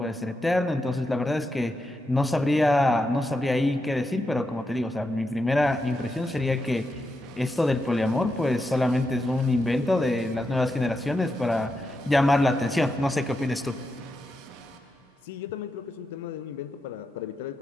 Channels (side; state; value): both; normal; correlation 0.86